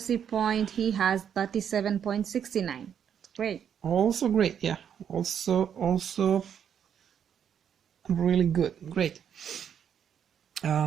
point, he has 37.69. Great. Also great, yeah. Also really good. Great.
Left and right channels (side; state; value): left; quieter; 8.5 dB